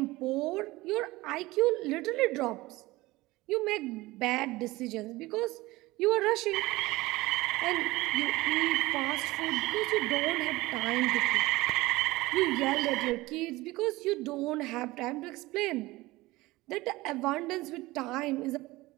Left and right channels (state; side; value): quieter; left; 19.8 dB